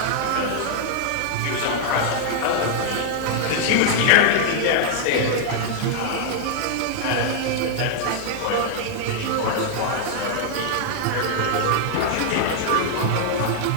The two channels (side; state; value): both; different; correlation -0.01